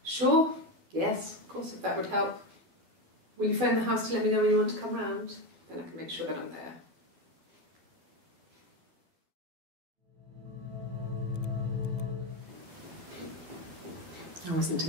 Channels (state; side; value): late; left; 12 ms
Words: Sure. Yes, of course, if that would help. Will you phone the house to let me know when you want to come round? Then I can make sure that I'm there. I wasn't